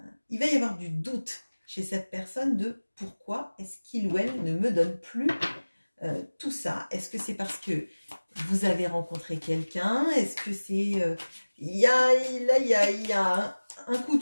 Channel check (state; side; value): inverted; both; correlation -1.00